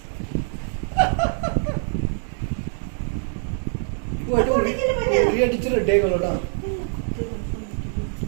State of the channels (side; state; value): left; silent; digital silence